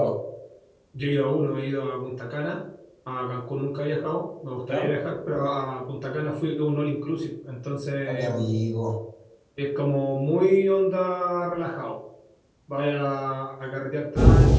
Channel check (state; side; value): identical; both; correlation 1.00